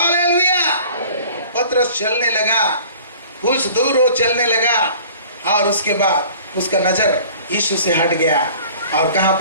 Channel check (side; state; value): both; inverted; correlation -0.47